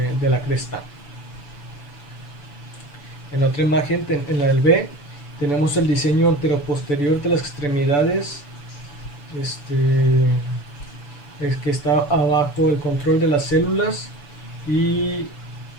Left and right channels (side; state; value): right; late; 6.9 ms